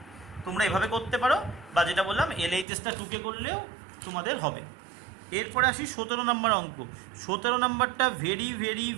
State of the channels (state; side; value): drops out; left; at 2.7 s